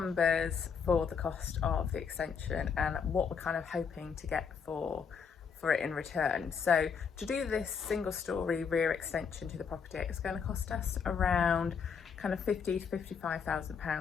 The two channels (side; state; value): right; quieter; 6.4 dB